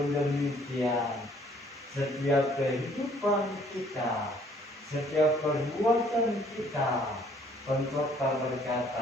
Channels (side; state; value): both; normal; correlation 0.60